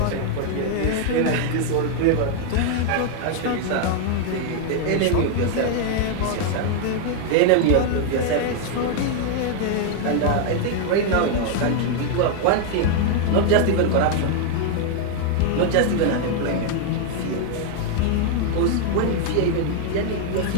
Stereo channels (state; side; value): different; both; correlation 0.00